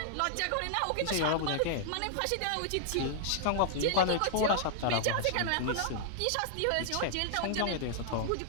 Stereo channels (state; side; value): different; both; correlation -0.01